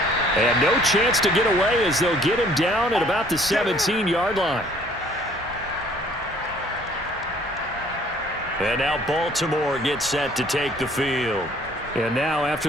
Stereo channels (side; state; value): both; normal; correlation 0.58